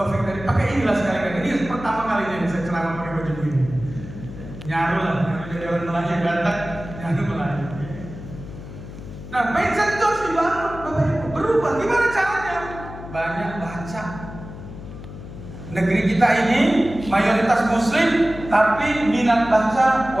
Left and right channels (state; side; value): noise; left; hum, 13 dB below the sound